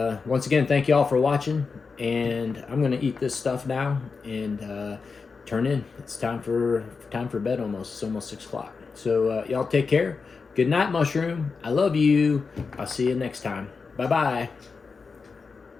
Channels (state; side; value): quieter; right; 4.9 dB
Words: Once again, thank you all for watching, and I'm going to eat this stuff now and turn in. It's time for bed almost. It's almost 6 o'clock. So y'all take care. Good night, Mushroom. I love you. I'll see you next time. Bye-bye.